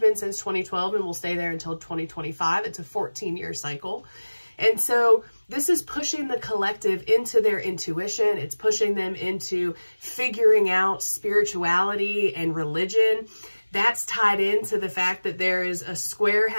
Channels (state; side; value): inverted; both; correlation -1.00